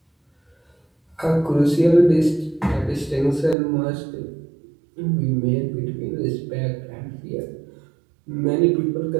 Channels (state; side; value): drops out; left; at 3.6 s